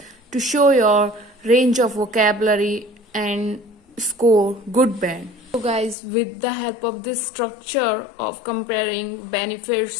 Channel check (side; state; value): right; drops out; at 6.0 s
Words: show your range of vocabulary and score good band. So guys, with the help of this structure of comparing